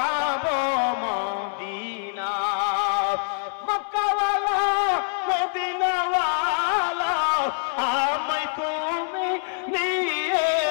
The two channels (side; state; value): right; silent; 62 dB below the other